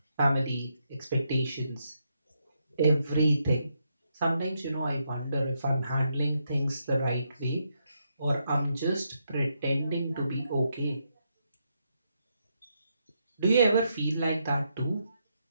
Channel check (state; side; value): inverted; both; correlation -0.79